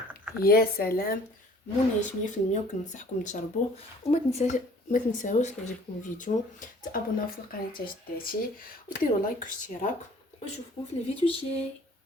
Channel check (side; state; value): both; normal; correlation 0.53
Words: يا سلام، منعش 100%. وكننصحكم تجربوه. وما تنساوش يعجبكم الفيديو تابوناو في القناه تاع جداتي وديروا لايك واشتراك، ونشوفكم في الفيديو الجاي.